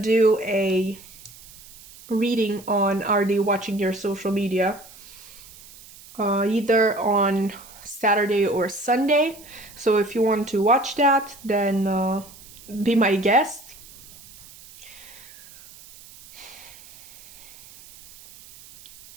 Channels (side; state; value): right; noise; hiss, 20 dB below the sound